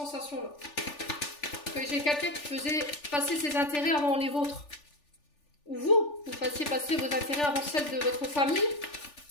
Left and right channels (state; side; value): late; right; 3.4 ms